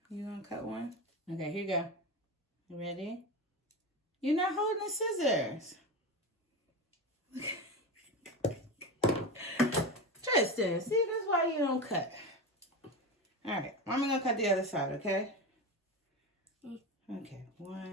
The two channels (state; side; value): normal; both; correlation 0.21